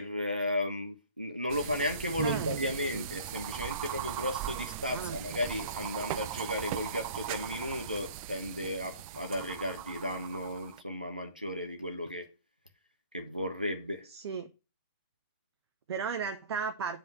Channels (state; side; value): inverted; both; correlation -0.48